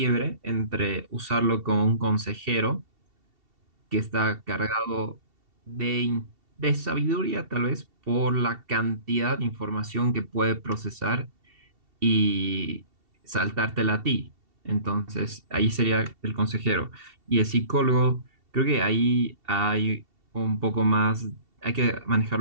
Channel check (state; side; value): late; left; 2.7 ms